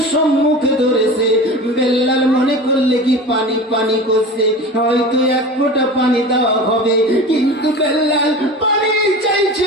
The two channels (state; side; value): normal; both; correlation 0.33